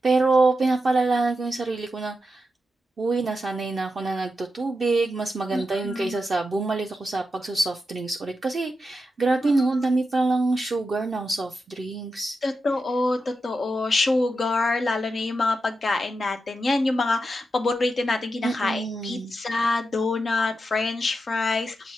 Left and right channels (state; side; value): normal; both; correlation 0.88